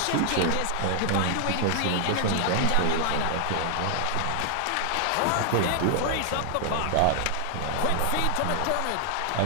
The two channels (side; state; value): both; different; correlation 0.00